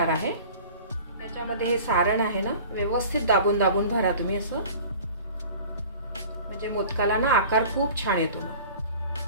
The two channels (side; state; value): both; inverted; correlation -0.42